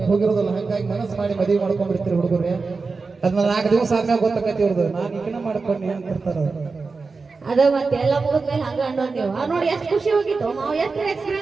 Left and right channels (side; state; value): left; quieter; 4.3 dB